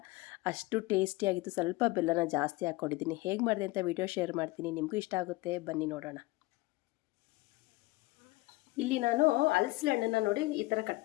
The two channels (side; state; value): right; quieter; 21.5 dB